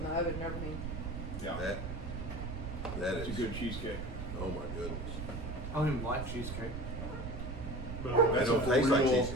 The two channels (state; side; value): noise; right; rumble, 6 dB below the sound